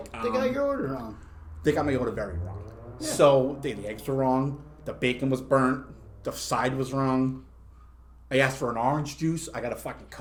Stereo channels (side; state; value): both; identical; correlation 1.00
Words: they got your order wrong. They got my order very wrong. Yeah. So the eggs were wrong. The bacon was burnt. The side was wrong. I asked for an orange juice. I got a fucking